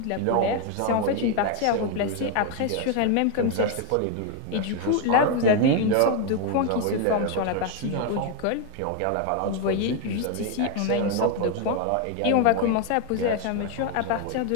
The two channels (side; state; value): both; different; correlation 0.01